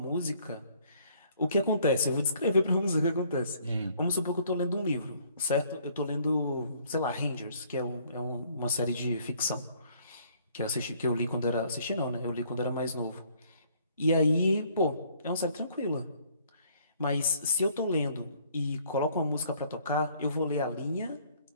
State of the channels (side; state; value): both; inverted; correlation -0.62